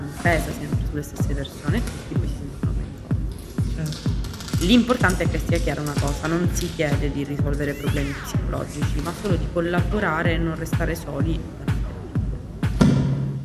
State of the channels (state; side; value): identical; both; correlation 1.00